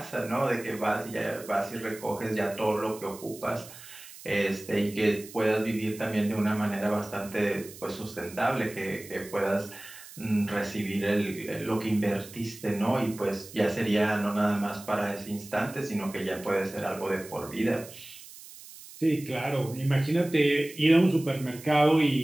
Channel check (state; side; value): noise; right; hiss, 17 dB below the sound